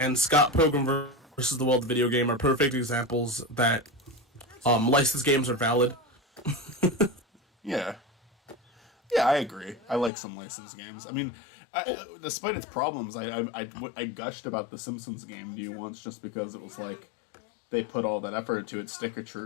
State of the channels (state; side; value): drops out; right; at 10.1 s